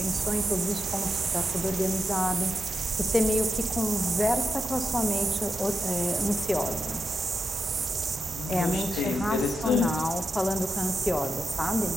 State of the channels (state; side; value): normal; both; correlation 0.87